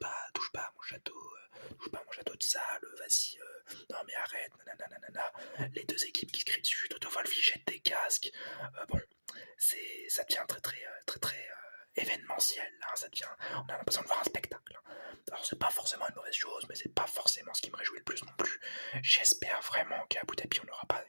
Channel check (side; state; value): both; inverted; correlation -1.00